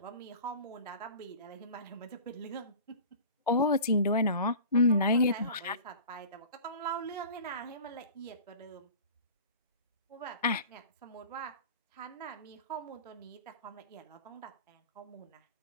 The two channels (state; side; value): inverted; both; correlation -0.39